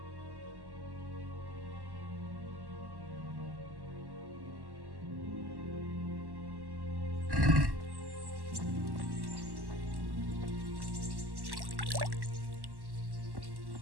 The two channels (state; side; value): late; left; 1.1 ms